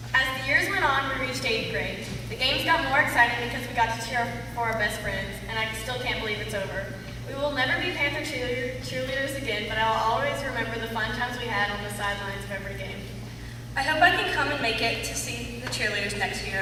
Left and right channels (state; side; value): identical; both; correlation 1.00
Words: As the years went on, we reached 8th grade. The games got more exciting because we got to cheer for our best friends, and I still can't believe it's over. We will never be Panther cheerleaders again, but I will always remember the fun times we had on the sidelines of every game. I hope I can come and make it to see the cheerleaders next